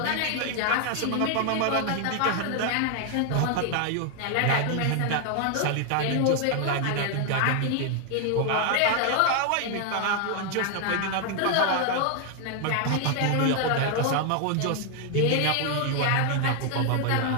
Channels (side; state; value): both; different; correlation 0.00